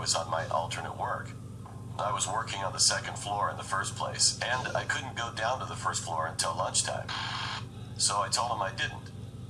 on my alternate work. I was working on the second floor in the first place, and I couldn't go down to the first floor until lunchtime. So I told him I didn't.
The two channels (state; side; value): identical; both; correlation 1.00